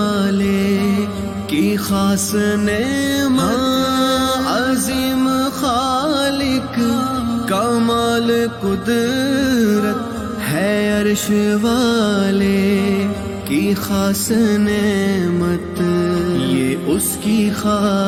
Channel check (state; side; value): identical; both; correlation 1.00